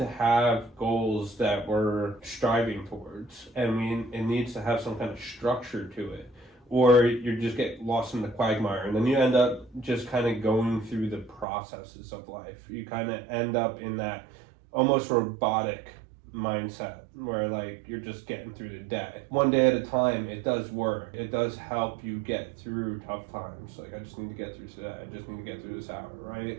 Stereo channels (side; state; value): left; drops out; at 11.5 s